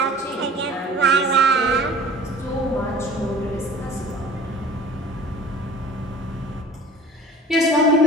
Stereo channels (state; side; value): normal; both; correlation 0.46